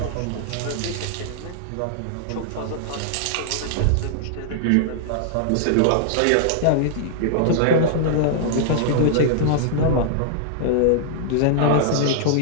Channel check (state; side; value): different; both; correlation -0.01